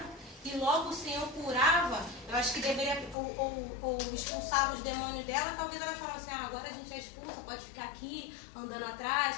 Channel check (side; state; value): right; drops out; at 3.2 s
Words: E logo o Senhor curava, eu acho que deveria, ou expulsava os demônios dela, talvez elas falassem, agora a gente já expulsa, pode ficar aqui, andando atrás.